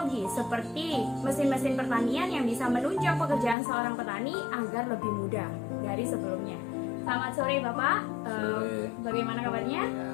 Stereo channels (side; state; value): right; drops out; at 3.6 s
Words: seperti mesin-mesin pertanian yang bisa menunjang pekerjaan seorang petani agar lebih mudah dari sebelumnya. Selamat sore Bapak, bagaimana kabarnya? Ya,